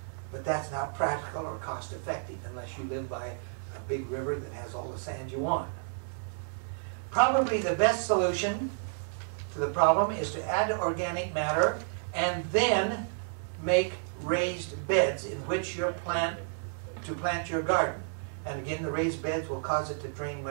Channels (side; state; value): left; silent; 57 dB below the other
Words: But that's not practical or cost effective unless you live by a big river that has all the sand you want. Probably the best solution to the problem is to add organic matter and then make raised beds in which you plant your garden. And again, the raised beds will cause it to drain